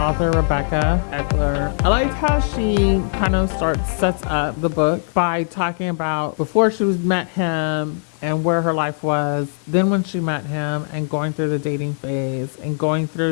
Rebecca Eckler. I liked how she kind of sets up the book by talking about before she met him and where her life was, then when she met him, and going through the dating phase and going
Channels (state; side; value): silent; right; digital silence